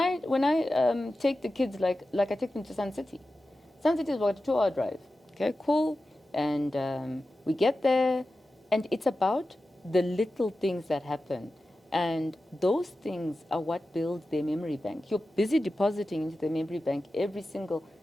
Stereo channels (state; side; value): normal; both; correlation 0.93